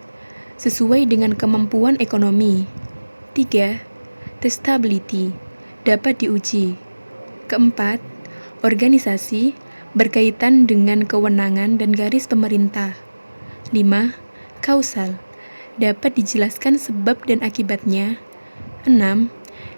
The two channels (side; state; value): both; inverted; correlation -1.00